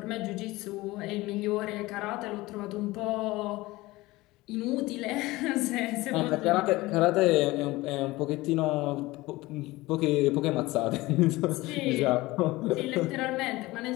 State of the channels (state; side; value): quieter; right; 19.9 dB